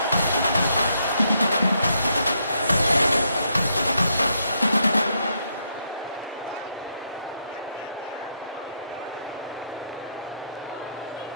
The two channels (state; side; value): inverted; both; correlation -0.76